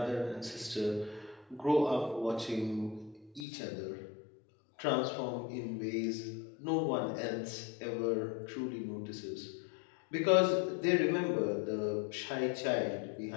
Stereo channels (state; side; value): drops out; right; at 3.5 s